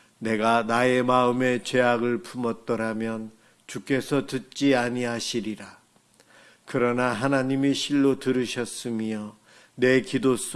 내가 나의 마음에 죄악을 품었더라면 주께서 듣지 아니하시리라. 그러나 하나님이 실로 들으셨으며 내 기도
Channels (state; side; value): identical; both; correlation 1.00